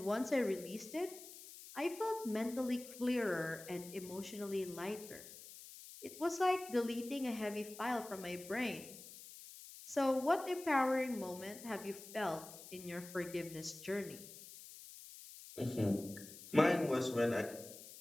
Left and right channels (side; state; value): left; noise; hiss, 15 dB below the sound